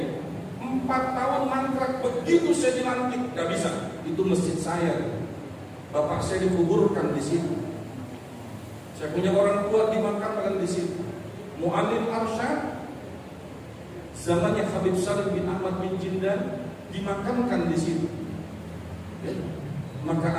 4 tahun mangkrak. Begitu saya dilantik, nggak bisa. Itu masjid saya. Bapak saya dikuburkan di situ. Saya punya orang tua dimakamkan di situ. Muallim Arsyad zamannya Habib Salim bin Ahmad bin Jindan dimakamkan di situ. Ya.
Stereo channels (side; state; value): both; identical; correlation 1.00